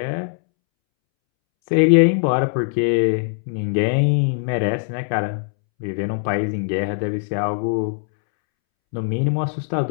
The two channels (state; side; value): silent; right; 65 dB below the other